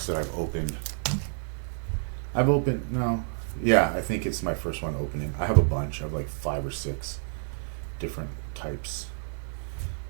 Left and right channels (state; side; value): silent; left; 56 dB below the other